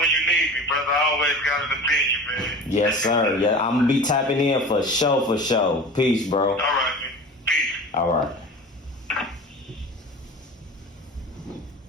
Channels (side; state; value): both; normal; correlation 0.36